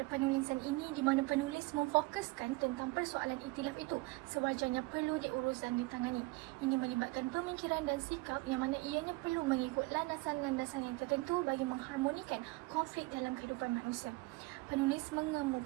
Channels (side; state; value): left; quieter; 23.6 dB